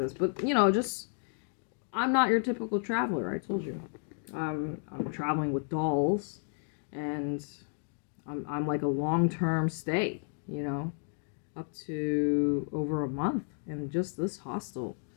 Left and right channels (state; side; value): silent; right; 56 dB below the other